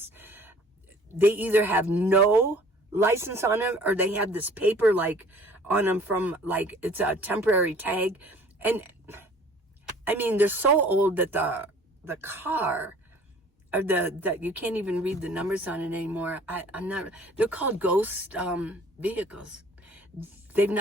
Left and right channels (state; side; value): normal; both; correlation 0.52